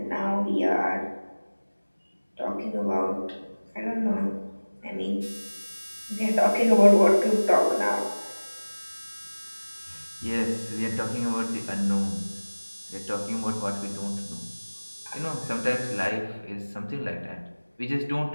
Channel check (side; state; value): both; inverted; correlation -1.00